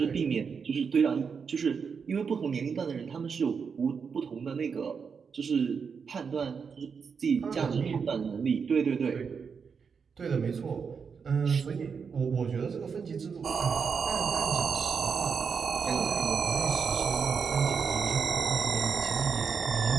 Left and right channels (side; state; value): left; quieter; 6.0 dB